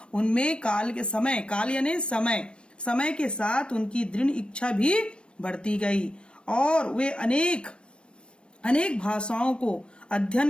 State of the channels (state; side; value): late; right; 0.057 ms